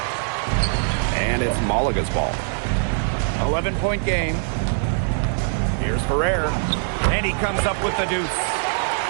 And it's Malaga's ball. 11-point game. Here's Ferrer. And he comes up with the deuce.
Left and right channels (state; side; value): silent; left; 64 dB below the other